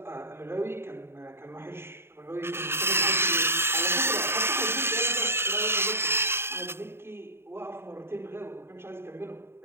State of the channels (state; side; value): late; left; 0.12 ms